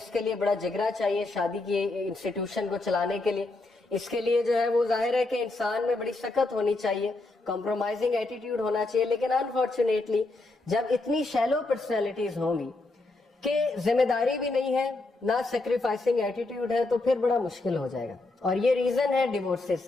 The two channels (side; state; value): right; quieter; 3.1 dB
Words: کے لیے بڑا جگرا چاہیے شادی کی انسٹیٹیوشن کو چلانے کے لیے. اس کے لیے جو ہے وہ ظاہر ہے کہ انسان میں بڑی سخت ہونی چاہیے, کمپرومائزنگ ایٹیٹیوڈ ہونا چاہیے. لیکن انفارچونیٹلی جب اتنی شیلو پرسنالٹیز ہوں گی کہ ذمہ داری بھی نہیں ہے, نہ سیکریفائسنگ ایٹیٹیوڈ ہے, تو پھر بڑا مشکل ہو جائے گا. اور یہ ریزن ہے ڈیورسز